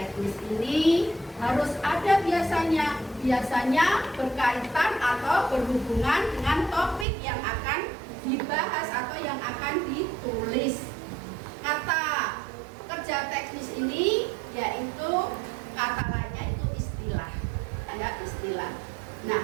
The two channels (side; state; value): left; drops out; at 7.1 s